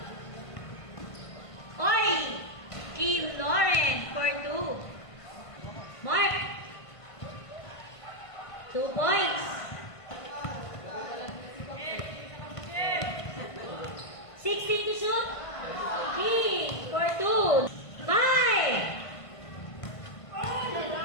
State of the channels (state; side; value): late; right; 1.5 ms